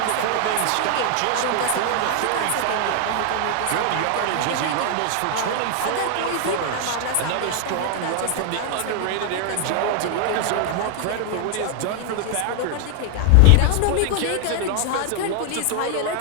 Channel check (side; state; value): both; different; correlation 0.00